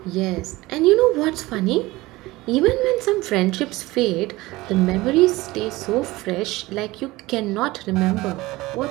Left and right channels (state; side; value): quieter; left; 19.8 dB